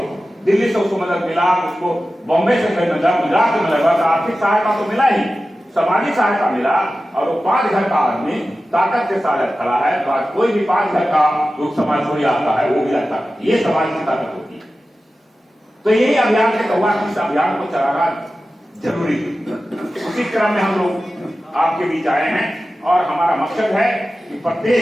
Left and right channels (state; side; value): normal; both; correlation 0.94